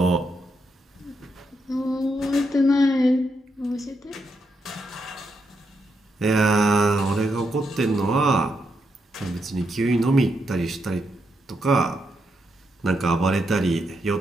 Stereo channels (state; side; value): normal; both; correlation 0.81